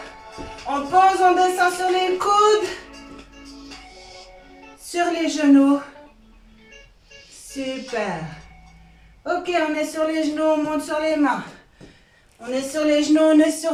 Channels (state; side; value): identical; both; correlation 1.00